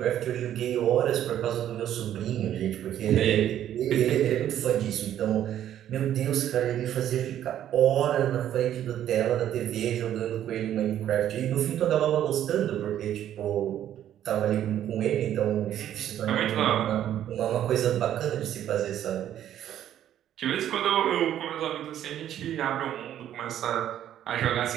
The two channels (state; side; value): quieter; left; 11.1 dB